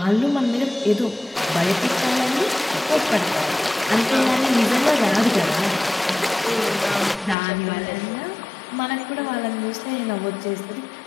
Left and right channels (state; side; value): drops out; right; at 7.4 s